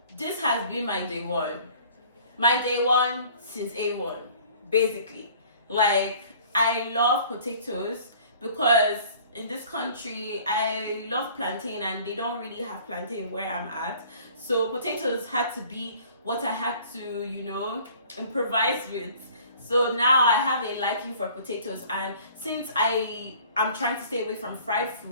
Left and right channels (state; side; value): inverted; both; correlation -0.51